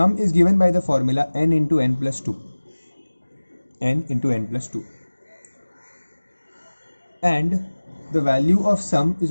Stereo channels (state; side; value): inverted; both; correlation -1.00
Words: is given by the formula n into n plus 2. N into n plus 2. And the value of sum is